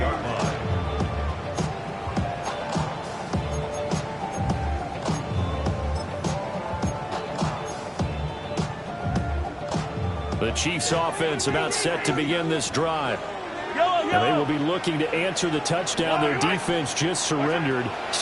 line. The Chiefs offense about set to begin this drive. And they will be looking to answer the touchdown their defense just surrendered.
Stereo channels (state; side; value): identical; both; correlation 1.00